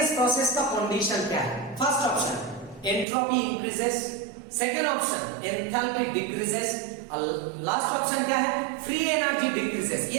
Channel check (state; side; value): drops out; left; at 3.1 s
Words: प्रोसेस का कंडीशन क्या है? First option entropy increases, second option enthalpy decreases, last option क्या है, फ्री एनर्जी डिक्रीजेस।